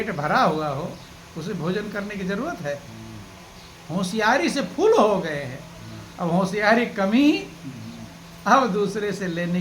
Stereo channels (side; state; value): both; identical; correlation 1.00